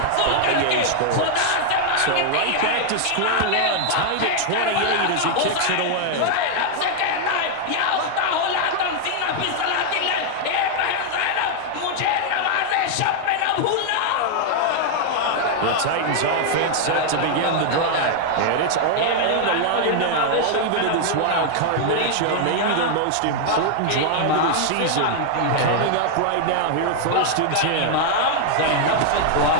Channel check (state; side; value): different; both; correlation 0.00